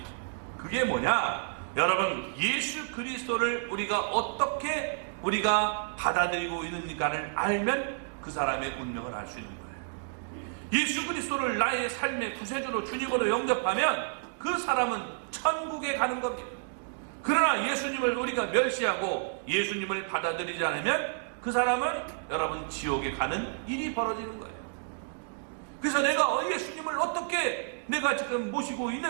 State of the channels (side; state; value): left; silent; digital silence